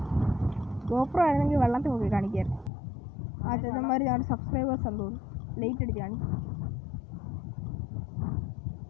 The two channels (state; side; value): drops out; right; at 2.7 s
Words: ഗോപ്രോ ആയിരുന്നെങ്കിൽ വെള്ളത്തിൽ നോക്കി കാണിക്കായിരുന്നു. ആ ചേട്ടന്മാർ ഞങ്ങളുടെ സബ്സ്ക്രൈബേഴ്സ് എന്ന് തോന്നുന്നു, ലേറ്റ് അടിച്ച് കാണിക്കും.